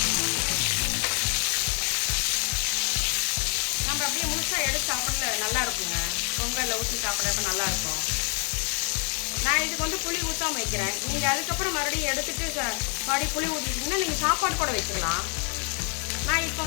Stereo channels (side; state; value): right; quieter; 39.5 dB